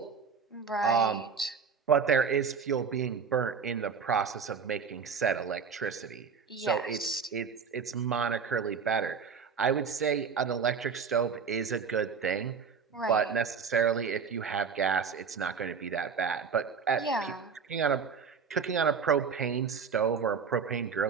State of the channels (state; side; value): quieter; left; 6.0 dB